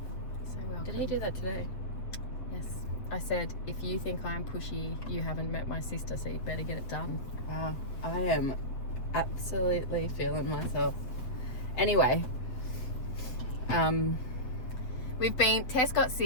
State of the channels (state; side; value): late; right; 7.9 ms